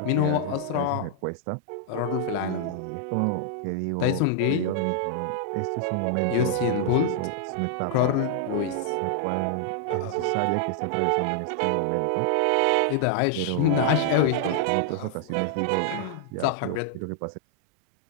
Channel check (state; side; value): different; both; correlation -0.01